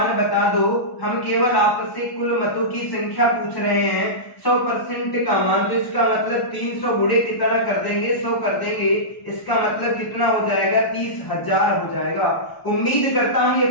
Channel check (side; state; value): right; late; 1.0 ms